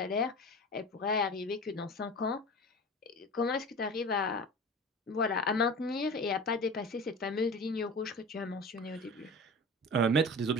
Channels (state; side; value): normal; both; correlation 0.35